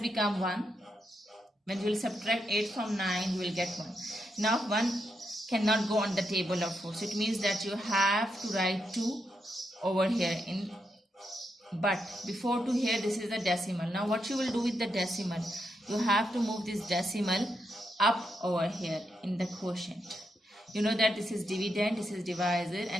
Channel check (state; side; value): normal; both; correlation 0.83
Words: 1. When you will subtract 8 from 9, you will get 1. Now 1 cannot go on the table of 4, so it means that you have to write 2 over here in. But before to here, this is the decimal. Now what you will do with the decimal, you have to move this decimal up over here in the quotient. You know that this is dividend, this is divisor,